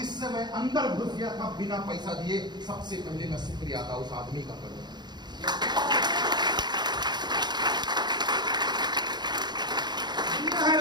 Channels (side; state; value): left; late; 0.21 ms